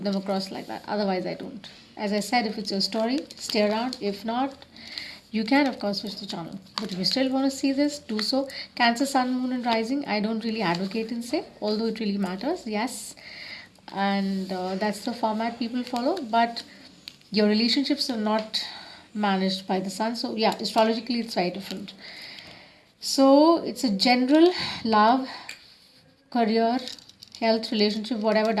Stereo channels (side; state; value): both; identical; correlation 1.00